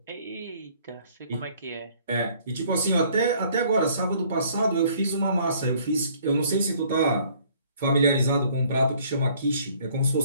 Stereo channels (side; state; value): both; inverted; correlation -0.60